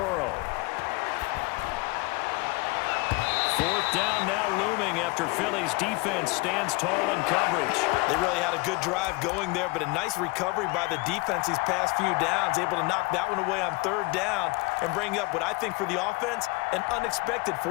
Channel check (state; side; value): quieter; right; 25.4 dB